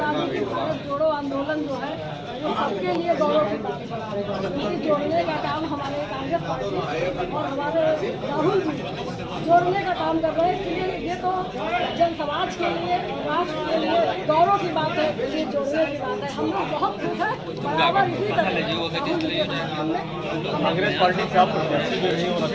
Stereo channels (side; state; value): both; identical; correlation 1.00